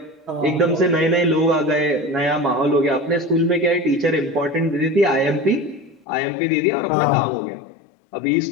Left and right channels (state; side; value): drops out; right; at 6.1 s